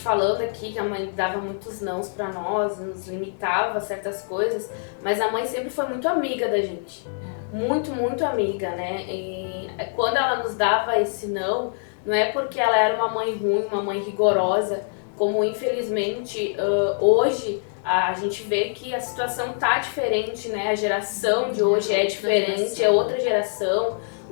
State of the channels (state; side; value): silent; right; digital silence